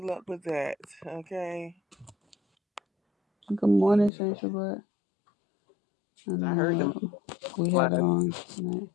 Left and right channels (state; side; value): drops out; right; at 4.1 s